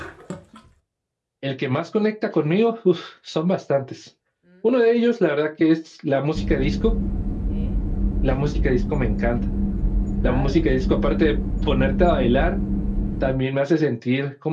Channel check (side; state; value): both; identical; correlation 1.00